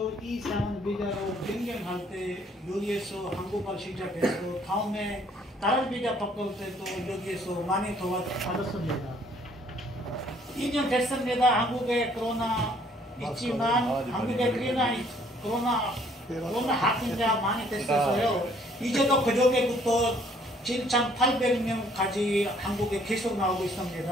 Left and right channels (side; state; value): both; normal; correlation 0.62